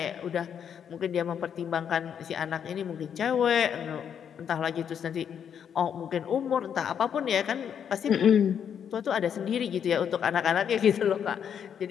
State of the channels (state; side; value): quieter; right; 8.2 dB